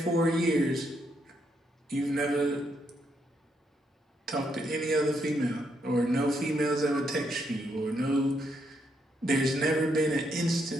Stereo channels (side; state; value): both; normal; correlation 0.77